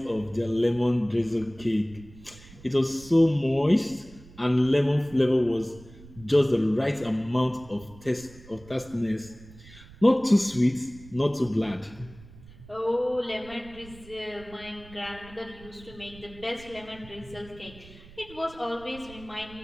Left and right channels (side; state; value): right; noise; rumble, 20 dB below the sound